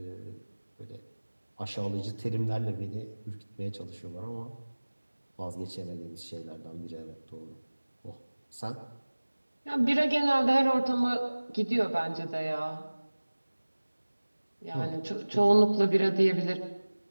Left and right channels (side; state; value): both; inverted; correlation -1.00